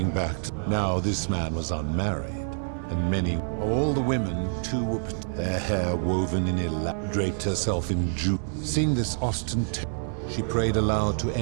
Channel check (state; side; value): silent; left; digital silence